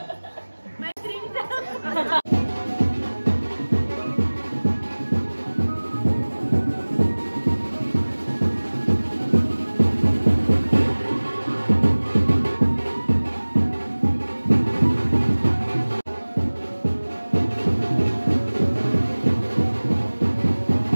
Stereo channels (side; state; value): both; inverted; correlation -1.00